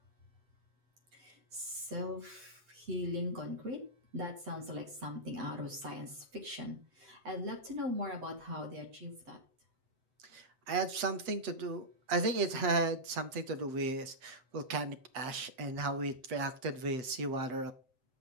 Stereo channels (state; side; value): late; left; 7.8 ms